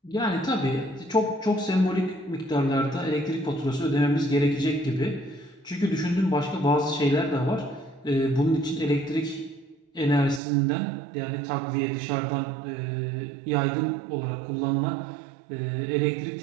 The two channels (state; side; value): drops out; left; at 10.4 s